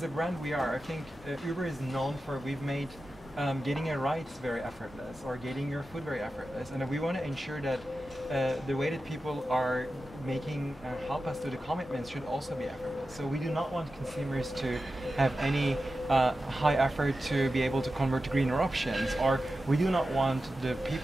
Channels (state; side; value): normal; both; correlation 0.92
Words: a brand we are, I think Uber is known for, we've made getting a ride very effortless, or getting your food very effortless, and we want to ensure that the way that people are making help us do the commitments should also be effortless. So we do not want consumers to have any high effort to be able to convert to greener options, or we do not want the